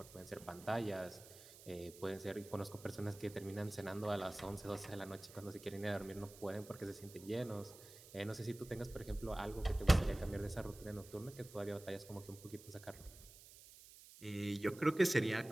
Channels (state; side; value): noise; right; hiss, 18 dB below the sound